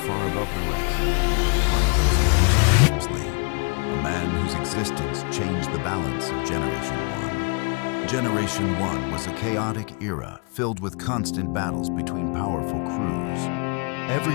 above the rest. One of those men is James Lee, a man whose existence changed the balance of Generation 1. Generation 1 was a chaotic era filled with constant battles between powerful crews.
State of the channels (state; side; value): quieter; right; 34.9 dB